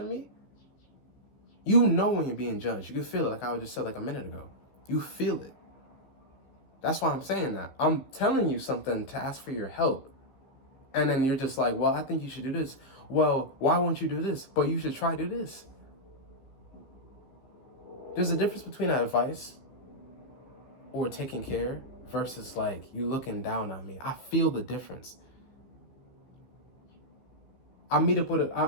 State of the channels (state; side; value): late; right; 15 ms